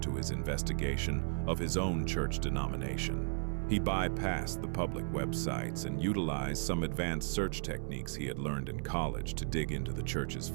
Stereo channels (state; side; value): silent; left; 54 dB below the other